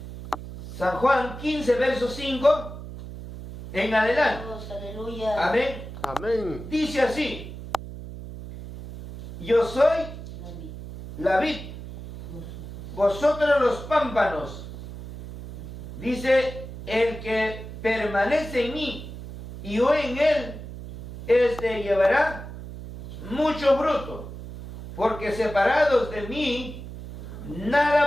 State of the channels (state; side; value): noise; right; hum, 11 dB below the sound